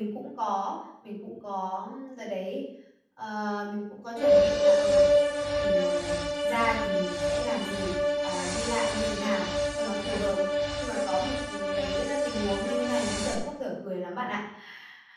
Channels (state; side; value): identical; both; correlation 1.00